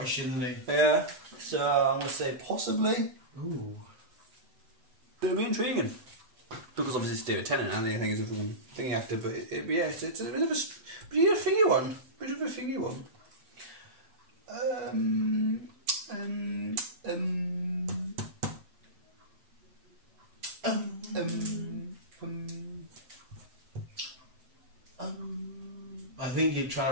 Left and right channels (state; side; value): late; left; 7.9 ms